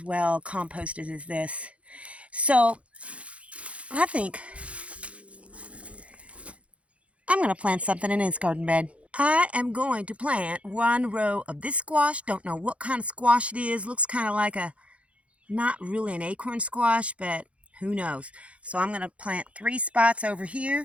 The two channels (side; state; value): left; late; 0.063 ms